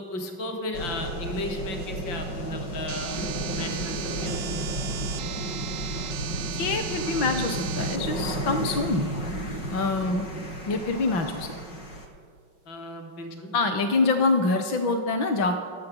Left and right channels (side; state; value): right; late; 5.3 ms